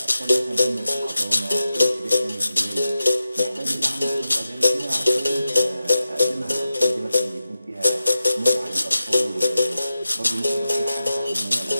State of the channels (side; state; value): both; inverted; correlation -0.92